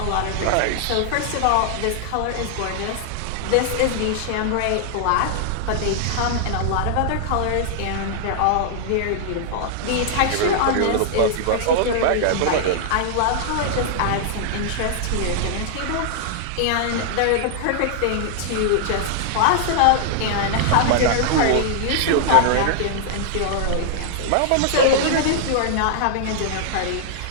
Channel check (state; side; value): different; both; correlation -0.01